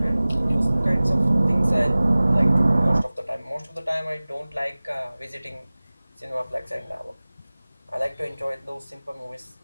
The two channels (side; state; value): both; inverted; correlation -0.99